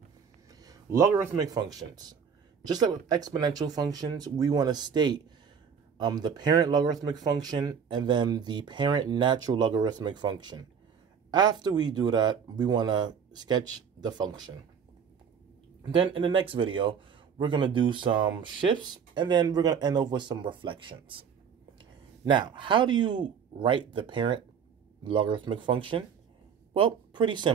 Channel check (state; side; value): quieter; left; 7.0 dB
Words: Logarithmic functions. Just like with exponential functions, we want to state the parent logarithmic function and then the parent natural logarithmic function. After we do that, we want to sketch the function. Then in the next video, we're going to do some shifts, and then we're going to end up with some reflections. Now, how do you write the parent logarithmic function? Well, pretty